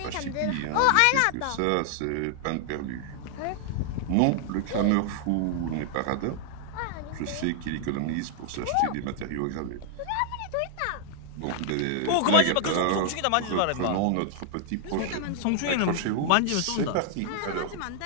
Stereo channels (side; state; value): both; different; correlation 0.00